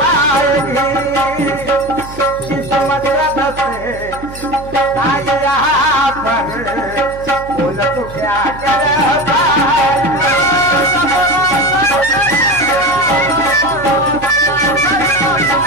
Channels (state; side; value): noise; right; hum, 15 dB below the sound